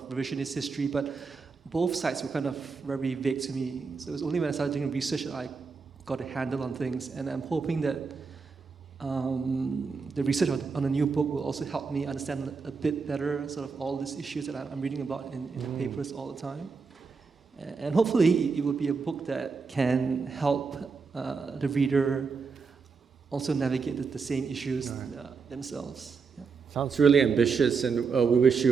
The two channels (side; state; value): left; quieter; 5.0 dB